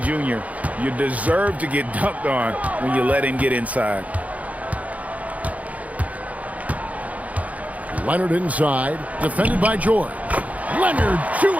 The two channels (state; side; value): late; left; 0.070 ms